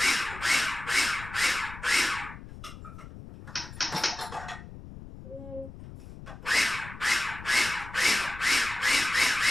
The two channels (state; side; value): noise; left; rumble, 14 dB below the sound